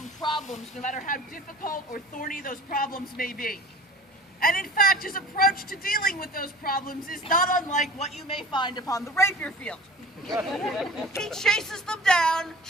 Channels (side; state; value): both; normal; correlation 0.42